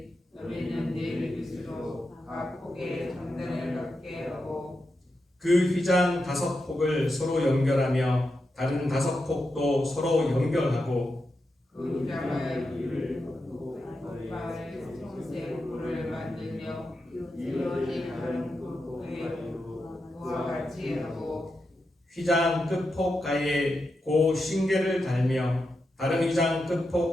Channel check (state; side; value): normal; both; correlation 0.87